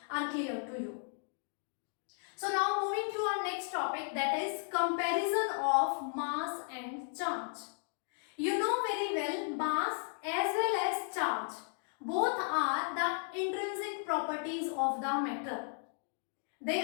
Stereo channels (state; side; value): silent; right; 54 dB below the other